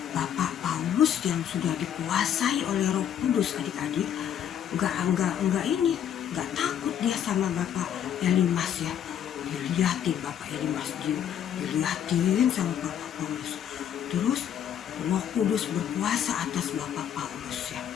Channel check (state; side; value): quieter; right; 9.6 dB